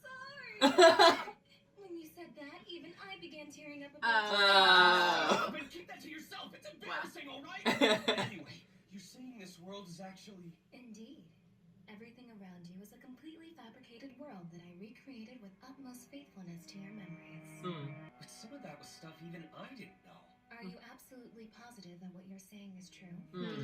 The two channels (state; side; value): identical; both; correlation 1.00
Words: When you said that, even I began tearing up a bit. But keep that to yourself. It's embarrassing, all right? Anyway, you're saying this world is actually... Indeed. Everything around you is a completely fabricated world that I recreated with utmost faithfulness to your memories. But some of that was stuff even I didn't know. Are you absolutely positive that what you're saying is true? Hmm. Did